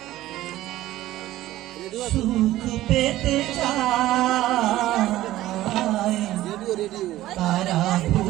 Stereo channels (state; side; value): quieter; left; 15.2 dB